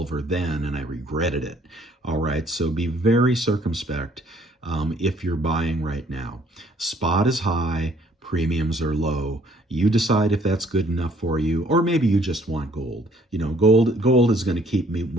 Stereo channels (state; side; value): normal; both; correlation 0.62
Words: then, and I regretted it. All right, so be very circumspect if you're buying right now. Spot is high, premiums are low. You decide if that's good enough for you, or maybe you just want gold. You know, gold is going to keep me